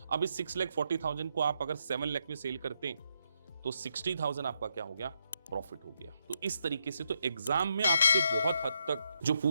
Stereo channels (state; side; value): inverted; both; correlation -0.79